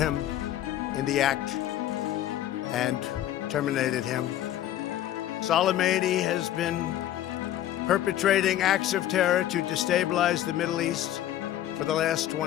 in the act and terminated him. Soleimani has been perpetrating acts of terror to destabilize the Middle East for the last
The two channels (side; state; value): right; quieter; 12.4 dB